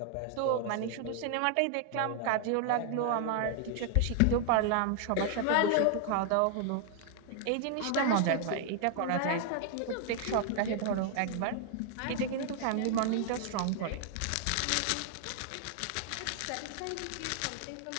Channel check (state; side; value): different; both; correlation 0.00